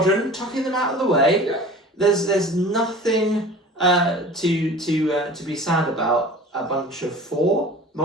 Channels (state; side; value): normal; both; correlation 0.41